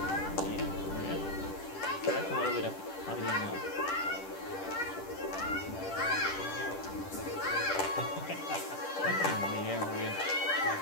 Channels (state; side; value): late; right; 10 ms